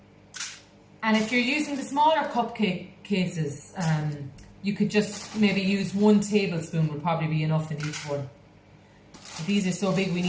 And if you're using the smaller cupcake cases, you could just maybe use 1 tablespoon would probably be enough in each one. But these are so big we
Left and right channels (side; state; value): both; identical; correlation 1.00